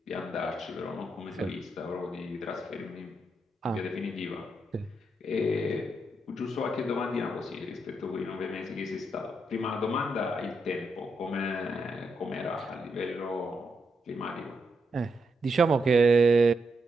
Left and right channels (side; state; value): both; normal; correlation 0.82